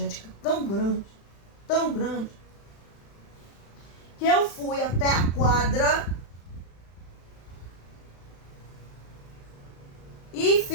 tão grande, que eu fui até a quadra e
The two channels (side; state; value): right; late; 36 ms